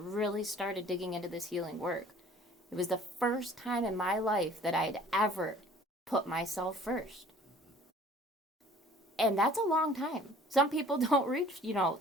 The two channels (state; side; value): normal; both; correlation 0.51